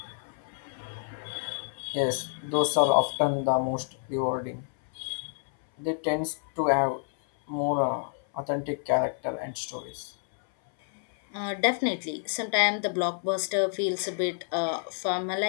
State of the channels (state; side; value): silent; right; 57 dB below the other